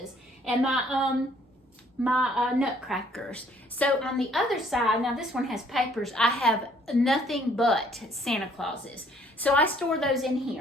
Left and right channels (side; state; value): both; normal; correlation 0.62